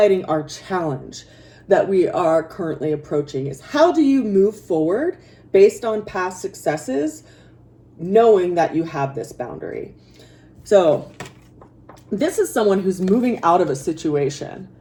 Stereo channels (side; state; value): both; identical; correlation 1.00